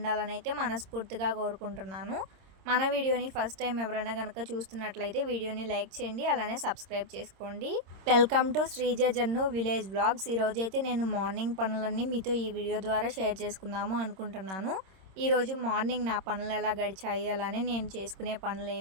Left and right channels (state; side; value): late; left; 26 ms